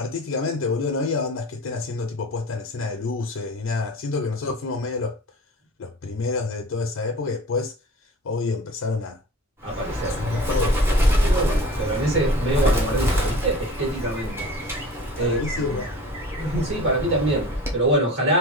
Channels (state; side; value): normal; both; correlation 0.39